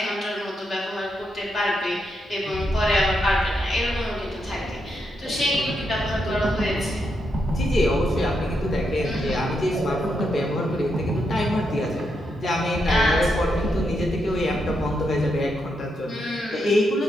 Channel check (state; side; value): normal; both; correlation 0.82